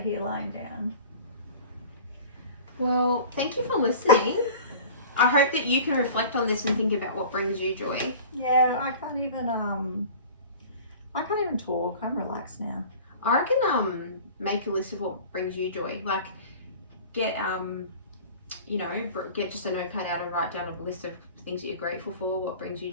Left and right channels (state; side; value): inverted; both; correlation -0.41